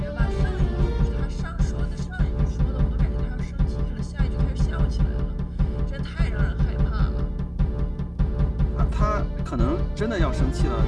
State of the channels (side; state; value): both; identical; correlation 1.00